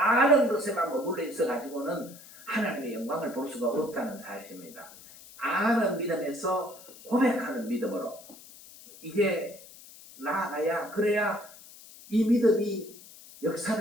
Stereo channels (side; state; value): left; noise; hiss, 19 dB below the sound